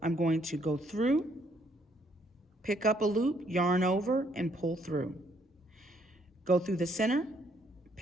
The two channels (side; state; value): both; normal; correlation 0.69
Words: I'm going to go through, pick up a loop, yarn over, and pull through. Go through the center,